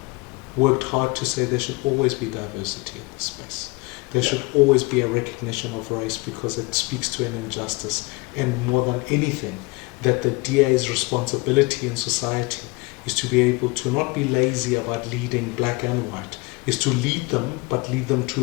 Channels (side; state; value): right; quieter; 25.3 dB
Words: worked hard to say there should always be diversity in this space. There should always be a recognition of race, because it speaks to an injustice. And more than anything, that the DA's responsibility in society is to be able to not be lazy about leading black and white, is to lead them, but lead them